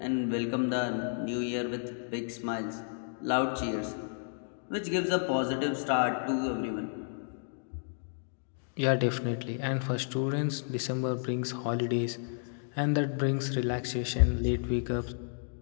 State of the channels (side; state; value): right; silent; digital silence